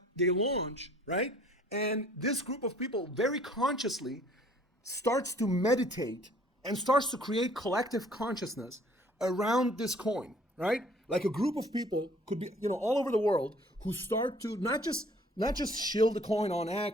they launch, right? And this group of people very consciously starts to meditate and starts to create collective consciousness around this coin, right? Like a group of people could be, all over the world who start to not just shield the coin on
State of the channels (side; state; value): both; normal; correlation 0.56